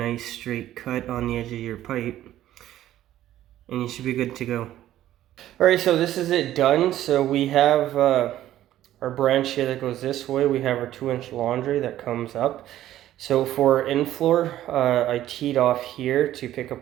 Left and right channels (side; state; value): left; quieter; 13.1 dB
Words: straight cut on the edge of your pipe, and you should be good to go. Alright, so this is it done. So we have our branch here that goes this way. We have our 2-inch laundry that comes up. So for in-floor, I teed off here to pick